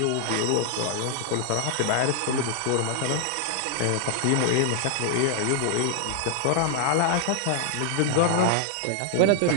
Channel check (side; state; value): both; different; correlation 0.00